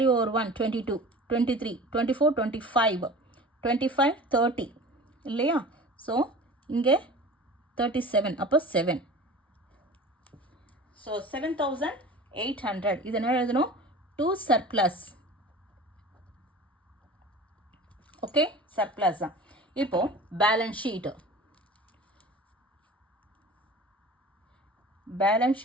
over 1 22 23 24 25 25 30 இல்லையா. ஸோ இங்கே 37, அப்போ 7. ஸோ 7800. இது என்ன எழுதணும், 2 சர்ப்ளஸ். ஓகே, சர்ப்ளஸ் தான். இப்போ balance sheet, balance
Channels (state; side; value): normal; both; correlation 0.40